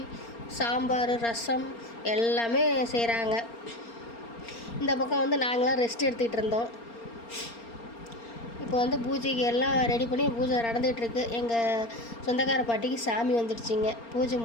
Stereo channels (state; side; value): late; right; 4.3 ms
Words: சாம்பார், ரசம் எல்லாமே செய்கிறாங்க. இந்த பக்கம் வந்து நாங்களாம் ரெஸ்ட் எடுத்துக்கிட்டு இருந்தோம். இப்போ வந்து பூஜைக்கு எல்லாம் ரெடி பண்ணி பூஜை நடந்துகிட்ருக்கு. எங்கள் சொந்தக்கார பாட்டிக்கு சாமி வந்துடுச்சிங்க. பூஜை